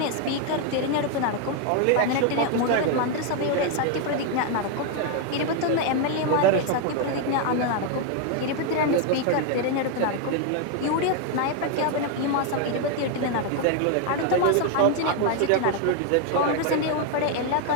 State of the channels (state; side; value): different; both; correlation 0.01